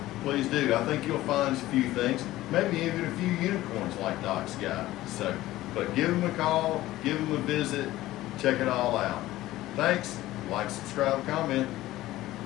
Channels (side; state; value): right; quieter; 16.1 dB